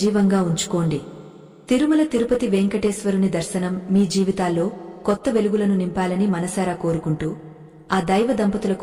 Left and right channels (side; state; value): both; identical; correlation 1.00